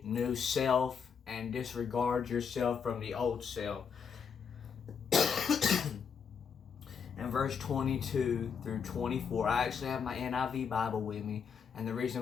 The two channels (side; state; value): right; quieter; 6.6 dB